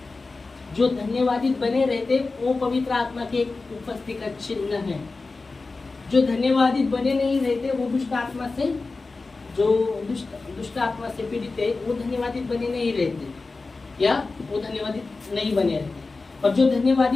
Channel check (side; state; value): right; quieter; 3.8 dB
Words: जो धन्यवादित बने रहते, वो पवित्र आत्मा के एक उपस्थिति का चिन्ह है। जो धन्यवादित बने नहीं रहते, वो दुष्ट आत्मा से दुष्ट आत्मा से पीड़ित है, वो धन्यवादित बने नहीं रहते, या वो धन्यवादित नहीं बने रहते। और जो